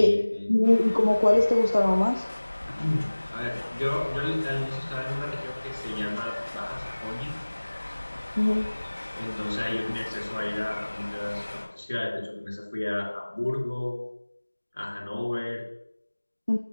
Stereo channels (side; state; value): both; inverted; correlation -1.00